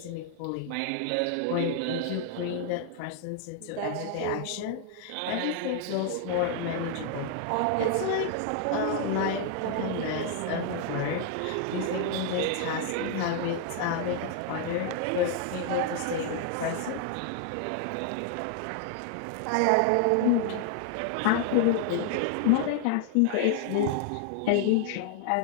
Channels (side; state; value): both; different; correlation 0.00